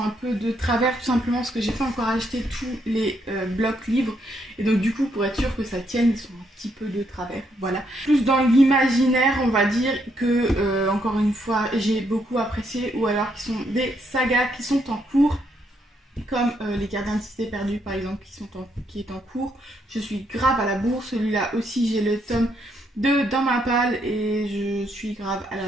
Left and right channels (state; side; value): normal; both; correlation 0.75